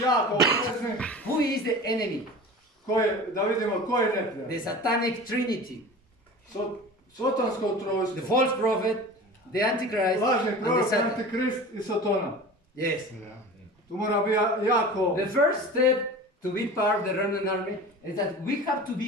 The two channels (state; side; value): normal; both; correlation 0.36